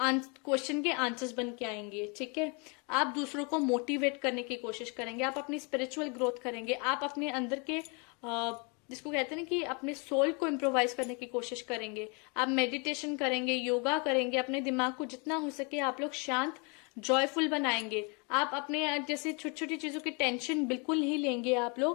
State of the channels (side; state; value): right; quieter; 33.1 dB